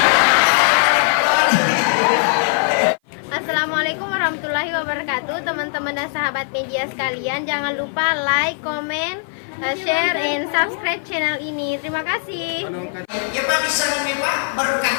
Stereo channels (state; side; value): silent; right; 56 dB below the other